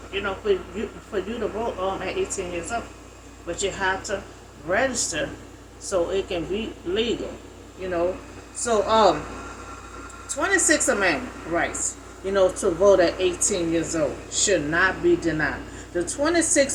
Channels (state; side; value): identical; both; correlation 1.00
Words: for you to vote at 18 years old. But you have to register so it can be legal, So, 26 Amendment rights, to vote at 18 years old should not be denied. The